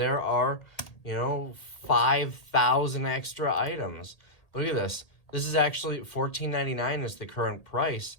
are, 5,000 extra items. Look at this. This is actually $14.99 is the current price.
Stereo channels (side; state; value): right; late; 1.8 ms